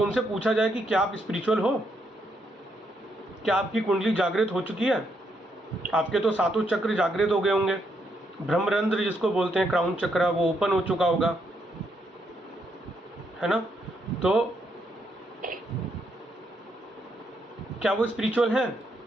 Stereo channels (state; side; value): normal; both; correlation 0.77